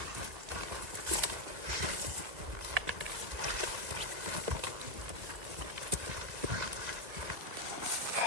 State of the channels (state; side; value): late; left; 2.0 ms